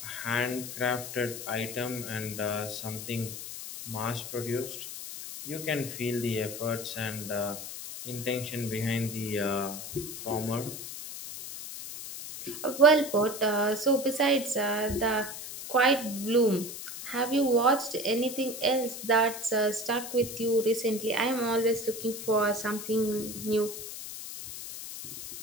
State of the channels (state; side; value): noise; left; hiss, 9 dB below the sound